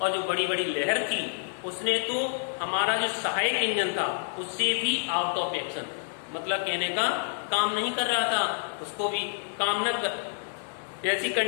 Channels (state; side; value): silent; right; digital silence